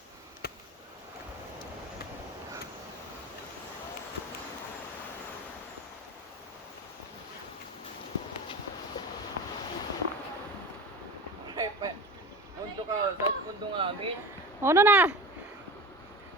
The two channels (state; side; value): normal; both; correlation 0.31